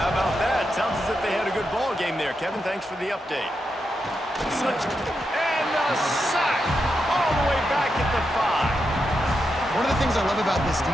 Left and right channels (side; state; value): both; normal; correlation 0.85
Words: about that? Sounds as if they had a good ball game there, Kevin. Thanks for the update. And a sack all the way back at the 5. One of the things I love about this